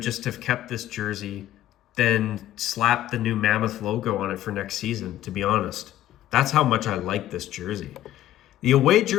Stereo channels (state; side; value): quieter; right; 13.3 dB